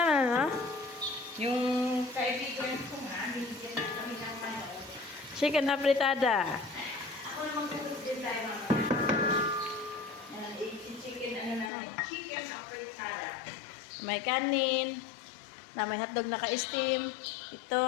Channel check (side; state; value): right; drops out; at 11.7 s